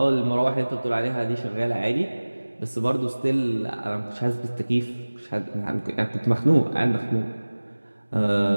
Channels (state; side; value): inverted; both; correlation -1.00